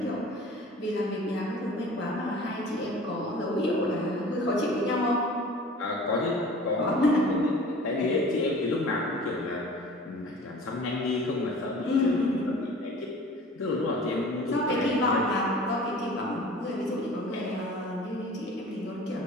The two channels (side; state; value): both; normal; correlation 0.43